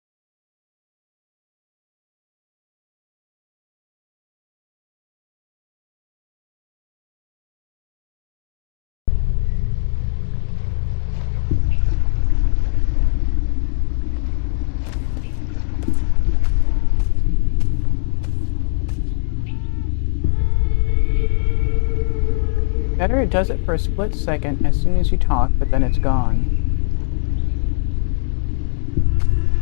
Better, it does it for a split second as soon as you talk, but then it's gone.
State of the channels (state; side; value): silent; right; 60 dB below the other